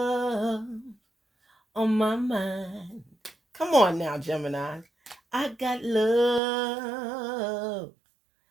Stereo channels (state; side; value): drops out; left; at 6.4 s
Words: on my mind. Come on now, Gemini. I got love